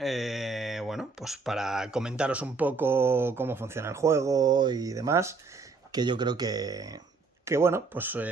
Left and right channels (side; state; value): left; quieter; 4.3 dB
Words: pues para comentaros un poco cómo funciona el juego y demás, que yo creo que bueno, pues